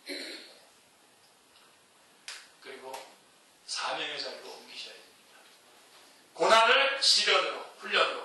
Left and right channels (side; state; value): both; identical; correlation 1.00